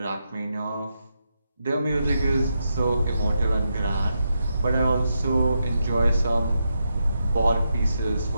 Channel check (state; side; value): inverted; both; correlation -0.84